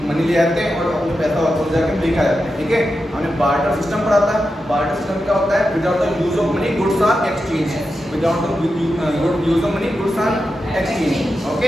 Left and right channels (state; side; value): normal; both; correlation 0.89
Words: मनी ले आते हैं और अपने पैसा वापस जाके लेके आ जाते हैं, ठीक है। हमने बार्टर सिस्टम पढ़ा था। बार्टर सिस्टम क्या होता है without the use of money goods are exchange, without the use of money goods are exchange,